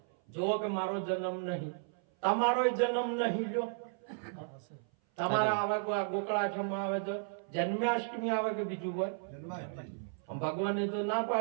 જો કે મારો જન્મ નહીં, તમારો જન્મ નહીં. લ્યો તમારા આવે ગોકળાઠમાં આવે તો જન્માષ્ટમી આવે કે બીજું હોય? ભગવાને તો ના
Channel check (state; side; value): silent; left; 55 dB below the other